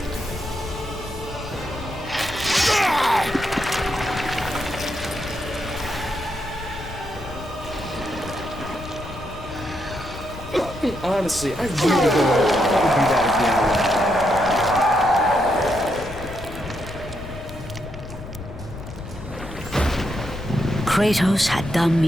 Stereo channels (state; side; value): noise; left; rumble, 13 dB below the sound